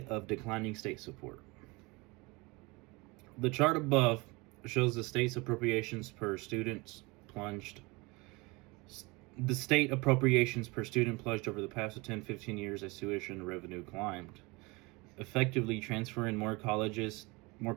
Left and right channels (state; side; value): quieter; left; 25.4 dB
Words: of declining state support. The chart above shows the state's appropriations per student plunged. The state appropriations per student plunged over the past 10-15 years as tuition revenue climbed, effectively transferring more college